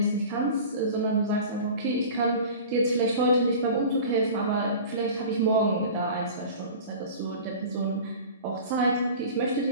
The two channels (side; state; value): both; inverted; correlation -0.38